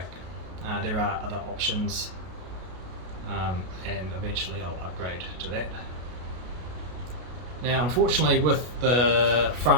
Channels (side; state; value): left; late; 33 ms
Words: There are other options, and eventually I'll upgrade to that. Now unfortunately with the